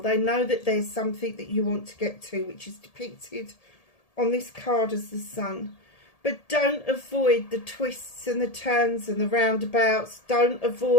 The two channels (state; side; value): late; right; 1.8 ms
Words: know that there's something that you want to get to, which is depicted on this card as the Sun. But don't avoid the twists and the turns and the roundabouts. Don't